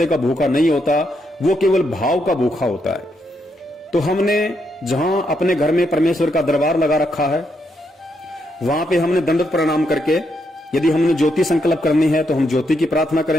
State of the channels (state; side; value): normal; both; correlation 0.79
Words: का भूखा नहीं होता, वो केवल भाव का भूखा होता है। तो हमने जहां अपने घर में परमेश्वर का दरबार लगा रखा है, वहां पे हमने दंडवत प्रणाम करके, यदि हमने ज्योति संकल्प करनी है तो हम ज्योति की प्रार्थना